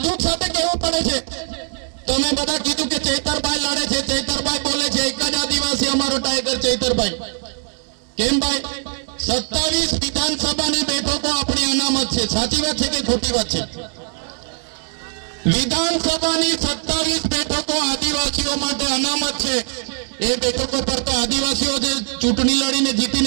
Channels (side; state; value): left; silent; 56 dB below the other